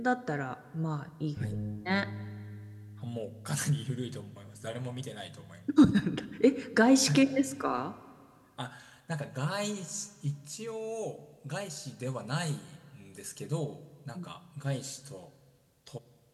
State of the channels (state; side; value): identical; both; correlation 1.00